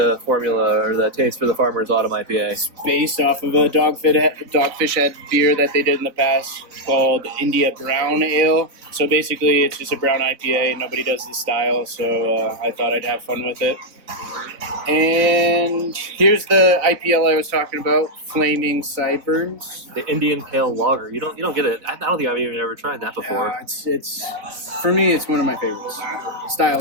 formula or the taste for the Farmer's Autumn IPA? It's based off of a Dogfish Head beer that they did in the past called India Brown Ale. So basically it's just a brown IPA. Nobody does this style, so I thought I'd have fun with it. And here's the IPL I was talking about, Flaming Sideburns. The Indian Pale Lager. You don't get it. I don't think I've even ever tried that before. It's for me. It's one of my favorites.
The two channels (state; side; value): late; left; 4.0 ms